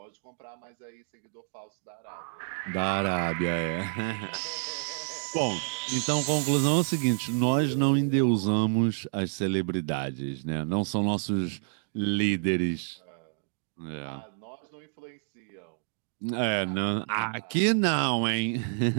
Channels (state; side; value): silent; left; digital silence